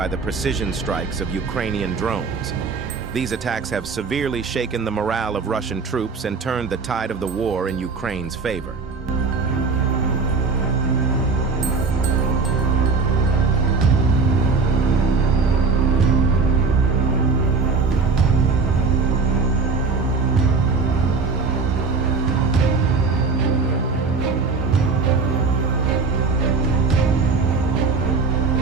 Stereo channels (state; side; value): quieter; left; 4.6 dB